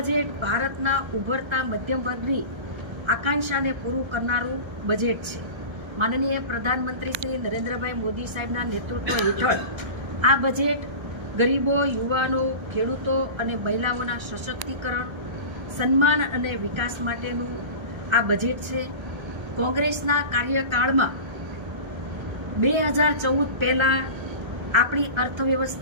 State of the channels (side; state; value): left; late; 1.3 ms